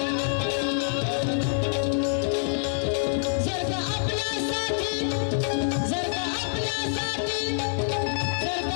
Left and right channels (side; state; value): right; silent; 59 dB below the other